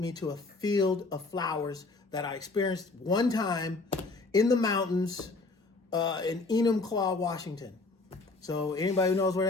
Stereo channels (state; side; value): quieter; right; 3.6 dB